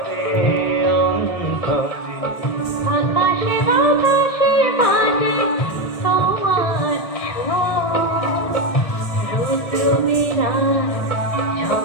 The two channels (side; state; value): right; late; 1.6 ms